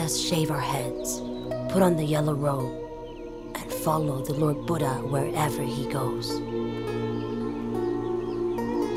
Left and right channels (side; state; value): both; identical; correlation 1.00